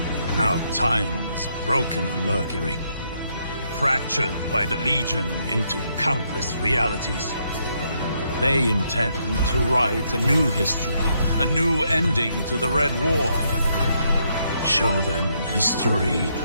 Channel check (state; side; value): inverted; both; correlation -0.75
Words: Now time is broken on Mercury, fractured by the Legion into countless realities. They intend to write a new history, a new ending to the Red War. Show them history